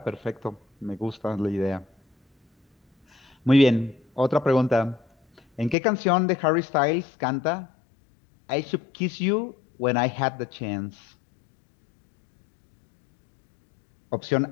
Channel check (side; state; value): right; drops out; at 5.8 s